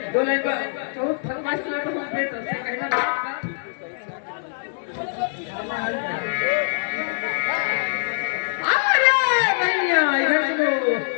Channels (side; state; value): right; silent; digital silence